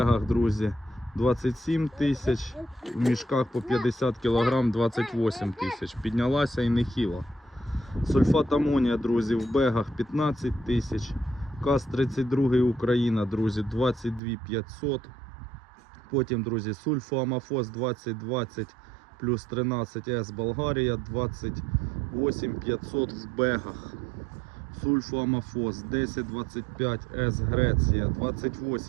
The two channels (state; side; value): drops out; left; at 14.2 s